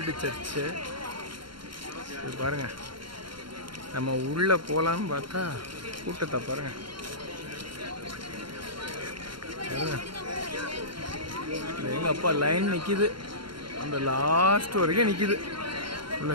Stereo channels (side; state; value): left; late; 0.73 ms